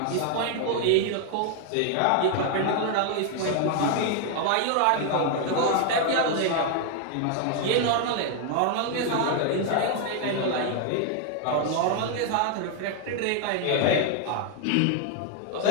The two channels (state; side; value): different; both; correlation 0.00